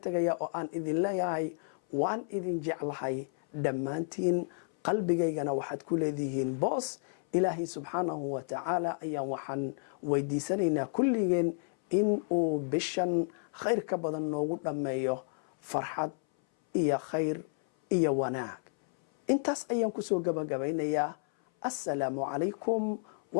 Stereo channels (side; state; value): right; silent; 57 dB below the other